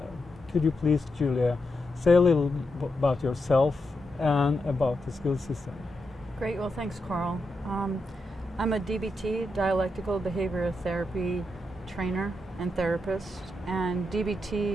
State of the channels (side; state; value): both; normal; correlation 0.85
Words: could you please, Julia, say a little about yourself and about the skill system? Great. Well, thanks, Carl. I'm a DBT, dialectical behavioral therapy trainer and therapist. And